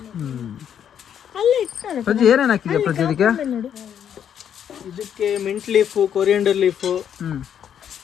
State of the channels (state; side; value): quieter; right; 9.0 dB